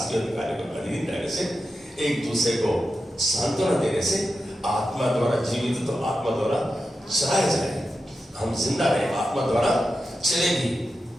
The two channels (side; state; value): both; normal; correlation 0.90